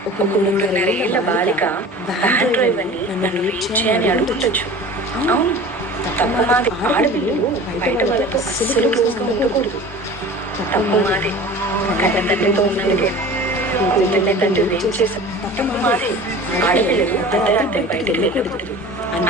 ఒక 3.5 ఏళ్ల బాలిక వ్యాన్ డ్రైవర్ని నన్ను రీచ్ చేయని అడుగుండొచ్చు. అవును, తప్పు మాదే. ఆడపిల్లలు బయట వాళ్ళతో అస్సలు క్లోజ్గా ఉండకూడదు. తప్పు మాదే. కన్న తండ్రితో ఉన్నందుకే కూతుర్ని తండ్రి రేపు చేశారు. తప్పు మాదే. ఆడపిల్లలు అర్ధరాత్రి బయటకు వెళ్ళకూడదు.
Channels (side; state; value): both; normal; correlation 0.40